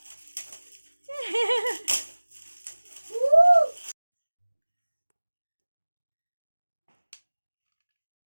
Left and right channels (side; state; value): both; inverted; correlation -1.00